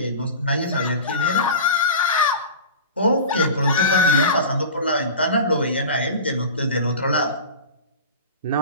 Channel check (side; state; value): both; inverted; correlation -0.33